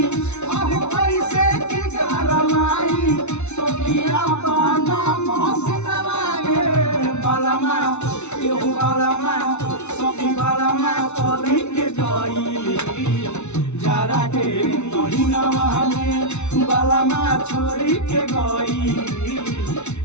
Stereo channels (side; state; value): right; late; 0.82 ms